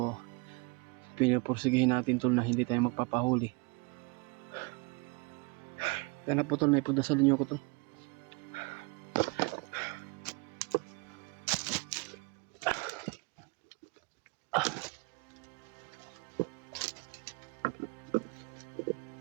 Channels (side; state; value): left; quieter; 29.4 dB